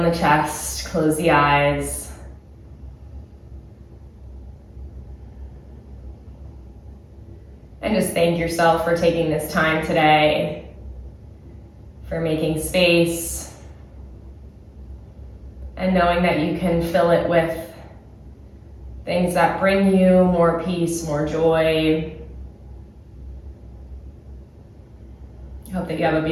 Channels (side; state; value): both; identical; correlation 1.00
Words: the chest, close the eyes. And just thank yourself for taking this time today, for making space, and knowing that you can fill it with things that bring you more peace, more joy. I hope that you have a